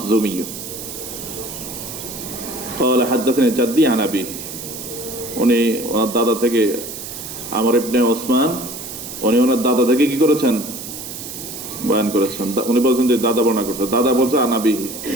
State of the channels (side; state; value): right; noise; hiss, 10 dB below the sound